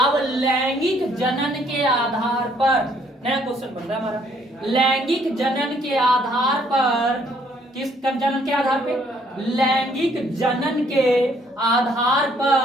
लैंगिक जनन के आधार पर नया क्वेश्चन बन रहा है हमारा, लैंगिक जनन के आधार पर, किस जनन के आधार पे, लैंगिक जनन के आधार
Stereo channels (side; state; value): both; normal; correlation 0.65